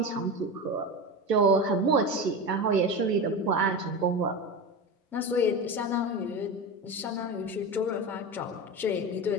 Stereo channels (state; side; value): normal; both; correlation 0.23